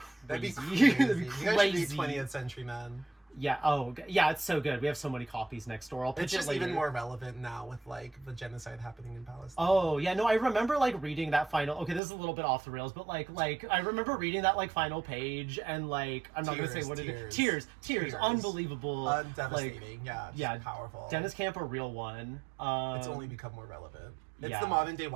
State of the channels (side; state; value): left; drops out; at 12.0 s